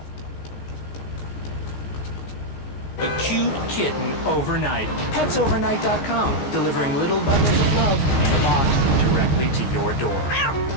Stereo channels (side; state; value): right; late; 15 ms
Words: A cute kitten overnight. PetsOvernight.com, delivering little bundles of love in a box directly to your door.